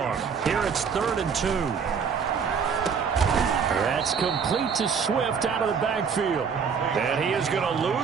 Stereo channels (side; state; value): left; quieter; 6.3 dB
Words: Here it's 3rd and 2. That's complete to Swift out of the backfield. And he is going to